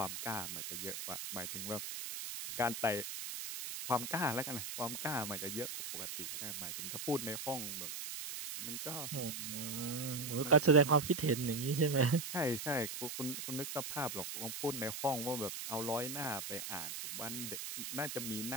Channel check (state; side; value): noise; right; hiss, 6 dB below the sound